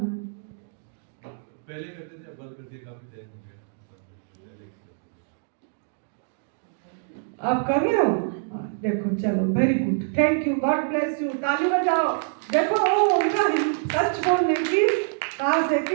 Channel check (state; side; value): silent; left; digital silence